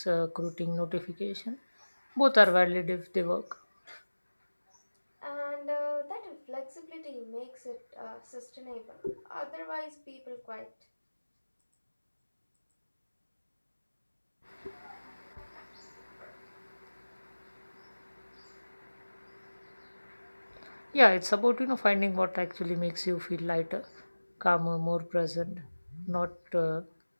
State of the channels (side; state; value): both; inverted; correlation -1.00